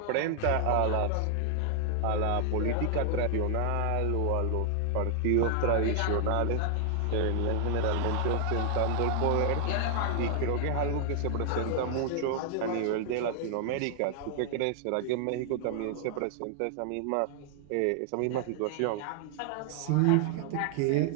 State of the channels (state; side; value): different; both; correlation 0.00